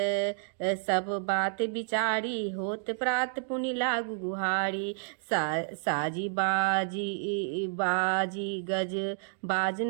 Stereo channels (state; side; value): silent; left; digital silence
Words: सब बात विचारी, होत प्रात पुनि लागु गुहारी। साजी बाजी गज बाज